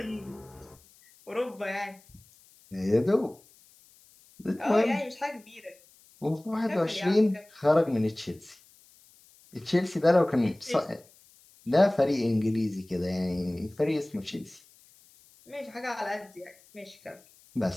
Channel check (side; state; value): left; noise; hiss, 28 dB below the sound